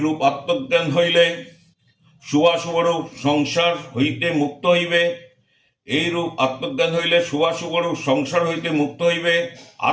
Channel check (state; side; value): identical; both; correlation 1.00